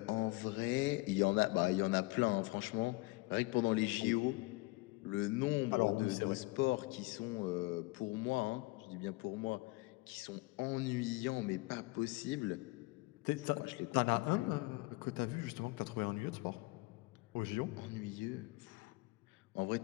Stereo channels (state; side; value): quieter; right; 23.1 dB